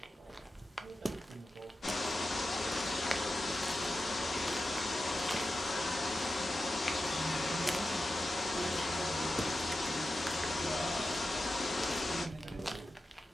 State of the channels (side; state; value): both; normal; correlation 0.92